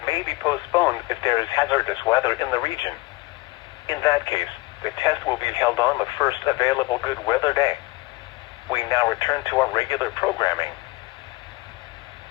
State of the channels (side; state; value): right; quieter; 22.5 dB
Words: may be postponed if there is hazardous weather in the region. In that case, the test will be held on the first available good weather day. We now return to our regular programming.